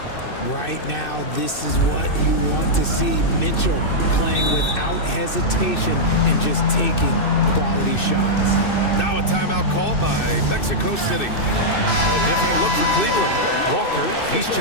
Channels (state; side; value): late; right; 2.6 ms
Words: Right now, this is what you want to see. Mitchell playing without hesitation and just taking quality shots. Now a timeout called by Mexico City. A different look for Cleveland. Walker, he's